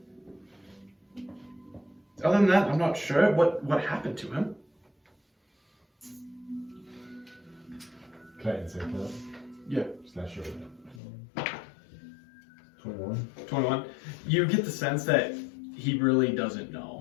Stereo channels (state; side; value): drops out; right; at 11.0 s